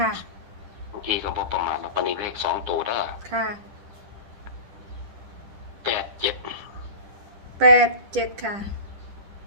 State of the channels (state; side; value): late; left; 10 ms